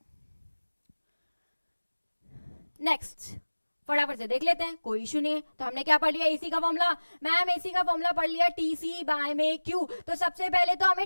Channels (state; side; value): inverted; both; correlation -1.00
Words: नेक्स्ट फटाफट से देख लेते हैं, कोई इशू नहीं है। तो हमने क्या पढ़ लिया, एसी का फॉर्मूला, मैम एसी का फॉर्मूला पढ़ लिया टीसी बाय में क्यू। तो सबसे पहले तो हमें